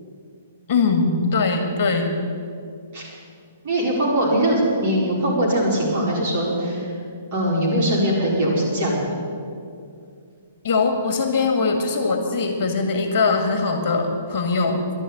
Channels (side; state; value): both; inverted; correlation -0.51